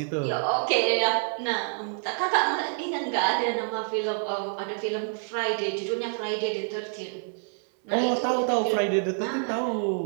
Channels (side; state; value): left; silent; 60 dB below the other